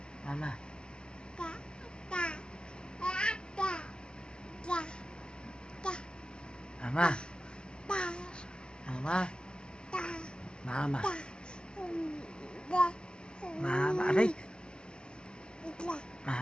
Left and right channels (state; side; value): late; right; 0.049 ms